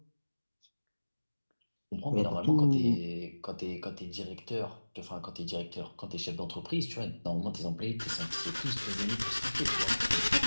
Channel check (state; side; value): inverted; both; correlation -1.00